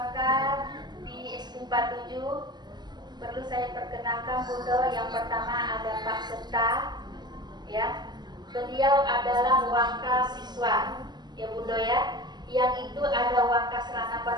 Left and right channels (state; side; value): late; left; 0.21 ms